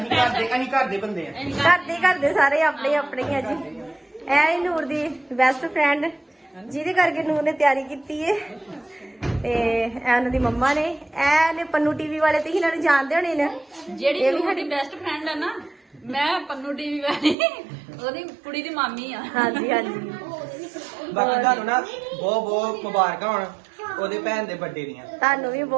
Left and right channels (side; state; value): left; drops out; at 17.4 s